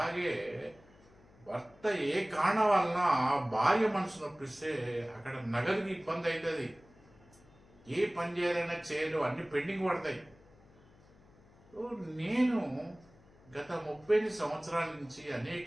భర్త ఏ కారణం వలన భార్య మనసు నొప్పిస్తే అక్కడ నగదుకి ఇబ్బంది అవుతుంది. ఏ పని చేయాలైనా చేయలు, అన్ని పెండింగ్ పడతాయి. నేను గత 30 సంవత్సరాల నుంచి అనేక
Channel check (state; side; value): noise; left; hum, 26 dB below the sound